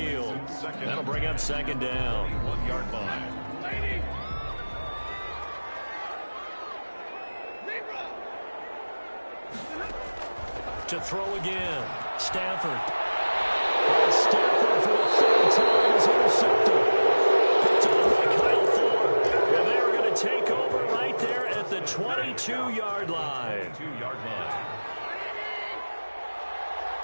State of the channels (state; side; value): inverted; both; correlation -1.00